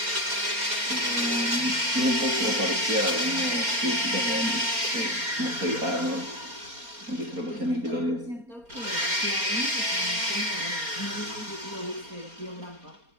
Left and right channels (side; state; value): left; late; 4.3 ms